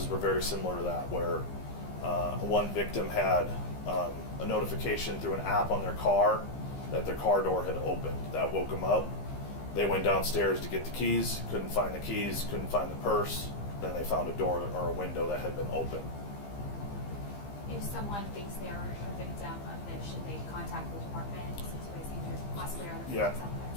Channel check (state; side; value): late; right; 15 ms